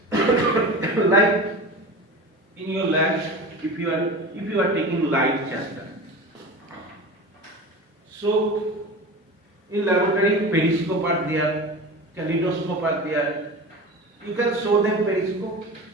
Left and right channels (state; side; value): normal; both; correlation 0.32